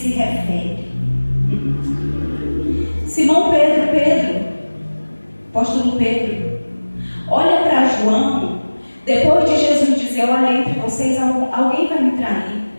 refere. Simão Pedro, apóstolo Pedro, olha para João, depois de Jesus dizer, olha, entre vocês alguém vai me trair.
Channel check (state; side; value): inverted; both; correlation -1.00